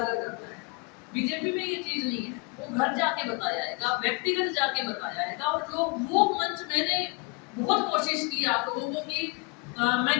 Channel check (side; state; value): right; quieter; 30.8 dB